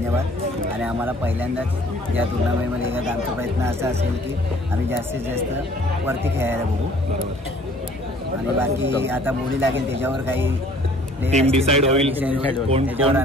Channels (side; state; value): both; normal; correlation 0.55